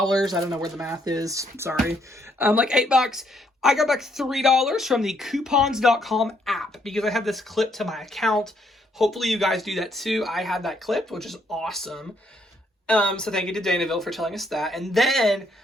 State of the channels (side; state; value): both; normal; correlation 0.72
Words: I don't know where the math is. Sorry. Like $8. I got back $3 from the coupons.com app because I have this clip to my account. Hopefully you guys do that too. I had that clipped, which is awesome. So thank you to Danaville for telling us that. And then